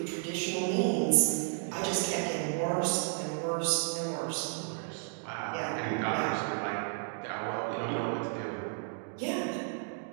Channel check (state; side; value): silent; left; 56 dB below the other